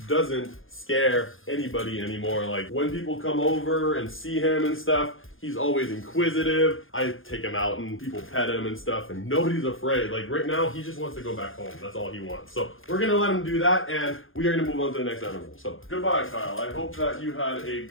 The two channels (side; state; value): right; late; 0.59 ms